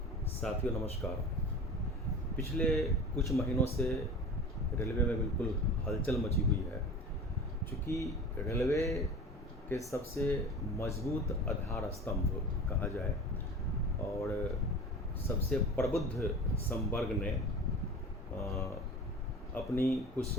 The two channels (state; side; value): normal; both; correlation 0.36